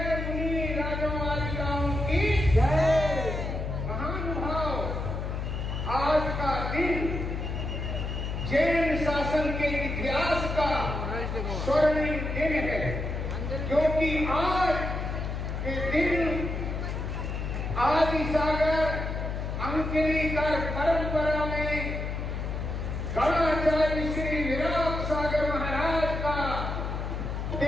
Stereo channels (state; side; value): noise; left; hum, 3 dB below the sound